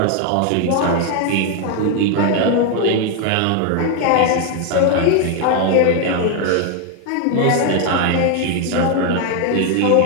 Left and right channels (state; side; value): different; both; correlation 0.01